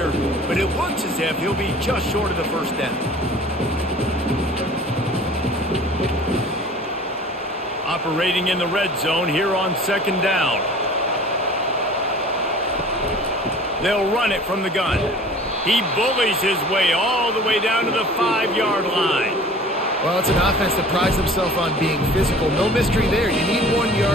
but it looks as if he'll be just short of the first down. Operating in the red zone here on second down. They'll run it from the gun. He bullies his way all the way down to the 5-yard line. Well, it's an offense that prides themselves on being physical. No mystery there. You need 1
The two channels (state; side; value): normal; both; correlation 0.45